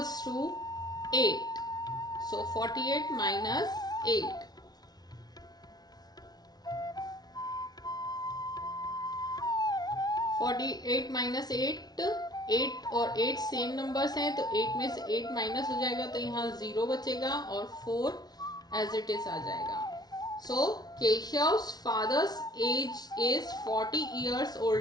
to 8. So 48 minus 8. 48 minus 8. 8 और 8 सेम नंबर्स हैं, तो 8 में से 8 माइनस हो जाएगा, तो यहाँ 0 बचेगा और 4 एज इट इज आ जाएगा. So Keshav's father's age is 40 years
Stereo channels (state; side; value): late; right; 0.19 ms